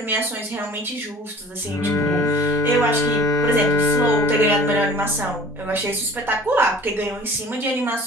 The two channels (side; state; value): both; normal; correlation 0.46